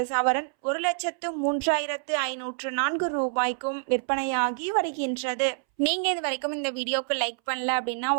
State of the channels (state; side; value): silent; left; 60 dB below the other